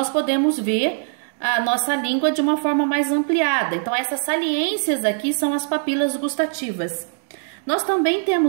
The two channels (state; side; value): silent; left; digital silence